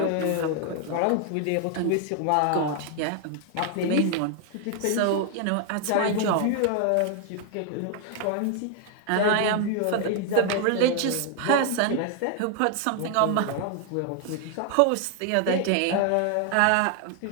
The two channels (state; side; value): different; both; correlation 0.00